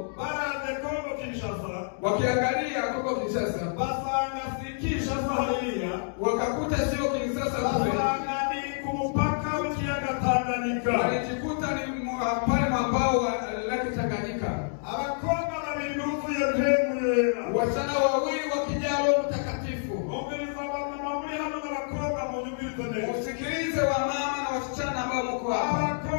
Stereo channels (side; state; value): right; silent; digital silence